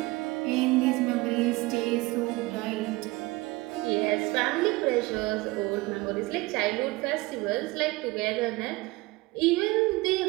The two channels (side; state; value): left; quieter; 21.8 dB